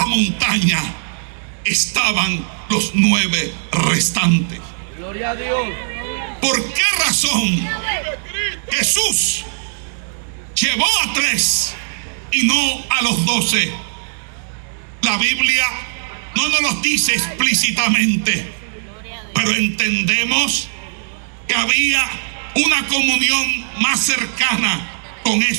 montaña estaban los 9 restantes. Gloria a Dios. ¿Por qué razón Jesús llevó a 3 y no a los 12? La Biblia no nos lo dice explícitamente, pero entendemos que había una comunión más cercana con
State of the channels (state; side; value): silent; left; 67 dB below the other